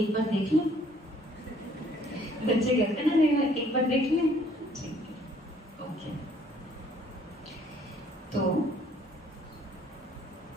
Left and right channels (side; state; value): both; normal; correlation 0.61